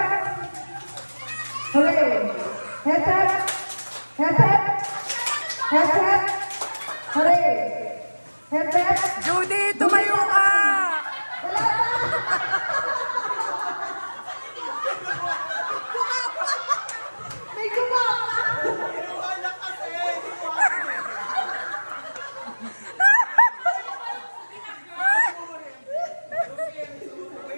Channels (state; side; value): inverted; both; correlation -1.00